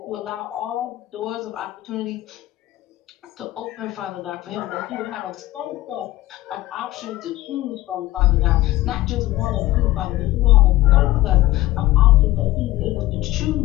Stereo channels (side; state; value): right; quieter; 16.7 dB